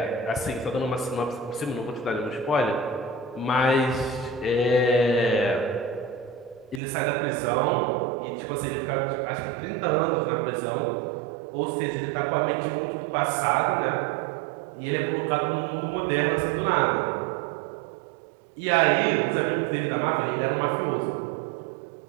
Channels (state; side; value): drops out; left; at 6.8 s